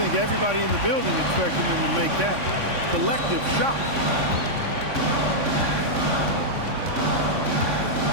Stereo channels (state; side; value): late; left; 3.5 ms